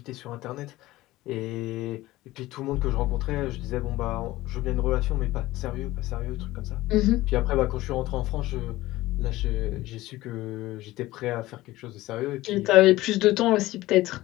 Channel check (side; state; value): right; quieter; 17.6 dB